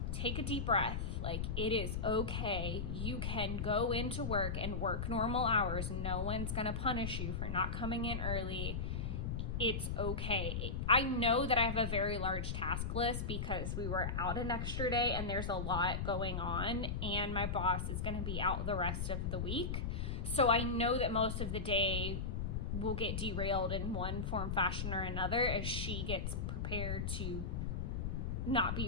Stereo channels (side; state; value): left; noise; rumble, 2 dB below the sound